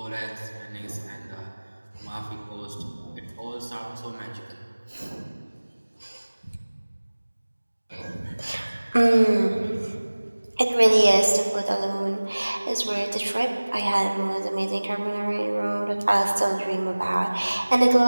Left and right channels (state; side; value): inverted; both; correlation -1.00